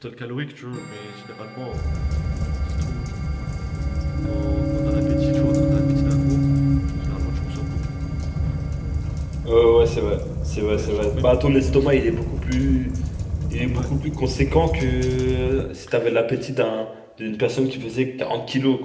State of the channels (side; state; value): both; identical; correlation 1.00